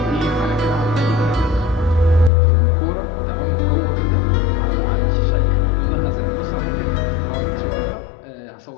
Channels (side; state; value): right; drops out; at 2.3 s